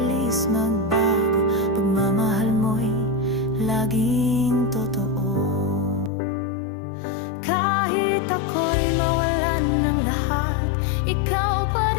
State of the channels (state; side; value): drops out; right; at 6.1 s